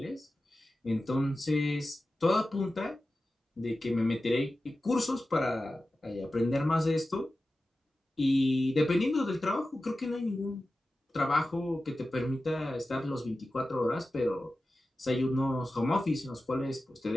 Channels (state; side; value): normal; both; correlation 0.94